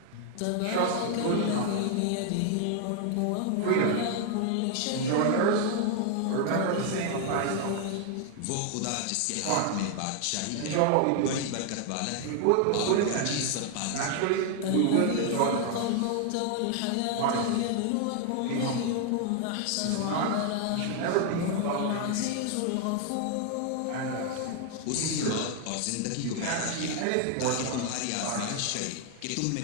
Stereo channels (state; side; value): different; both; correlation 0.00